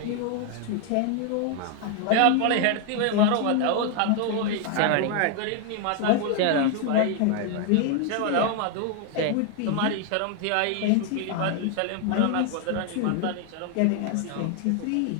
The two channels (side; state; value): both; different; correlation 0.00